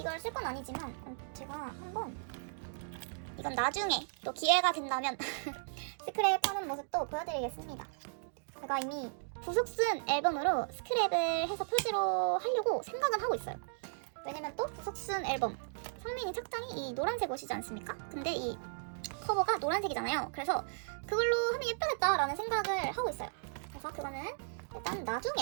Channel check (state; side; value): silent; left; digital silence